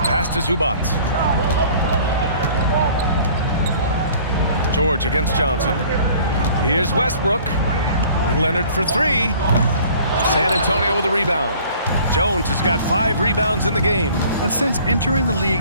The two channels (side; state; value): both; inverted; correlation -0.51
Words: pass to Zubac. George against Johnson. Here's Westbrook. Leonard for three. San Antonio with a rebound. Jones has got 5 rebounds in the game. And since entering the